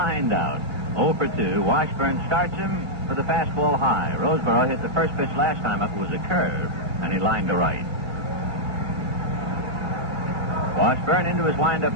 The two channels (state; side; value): late; left; 1.3 ms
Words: out. 0 for 2. Washburn starts him for the fastball high. Roseboro hit the first pitch last time up. It was a curve. and he lined to right. Washburn into his windup